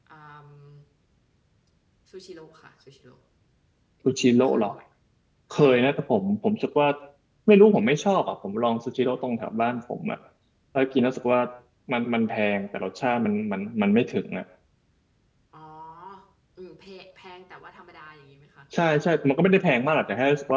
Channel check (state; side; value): identical; both; correlation 1.00